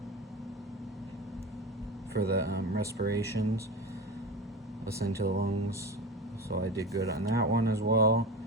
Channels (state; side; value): normal; both; correlation 0.27